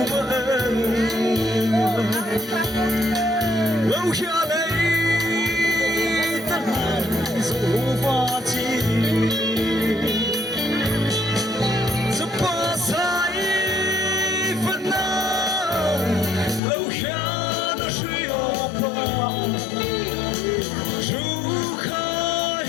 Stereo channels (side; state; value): right; drops out; at 16.6 s